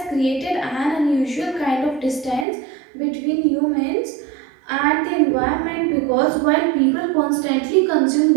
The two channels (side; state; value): left; drops out; at 2.5 s